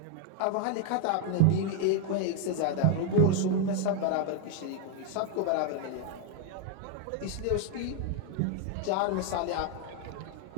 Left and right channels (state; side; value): different; both; correlation 0.00